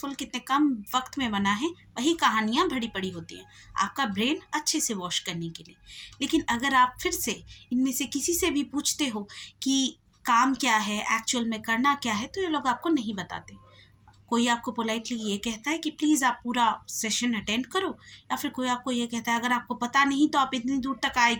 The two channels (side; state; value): both; identical; correlation 1.00